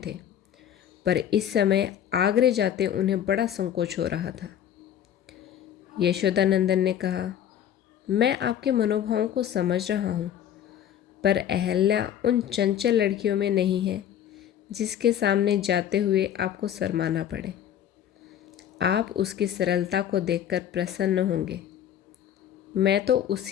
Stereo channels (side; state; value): right; quieter; 10.0 dB